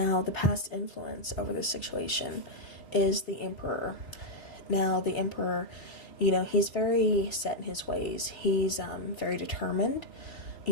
the past influence over this situation is the Emperor. Now, the Emperor, he's very set in his ways. He's very determined,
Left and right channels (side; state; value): right; late; 3.6 ms